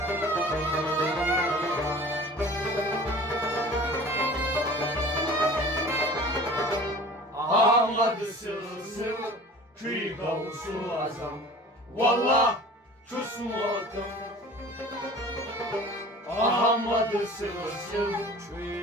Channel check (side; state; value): both; normal; correlation 0.43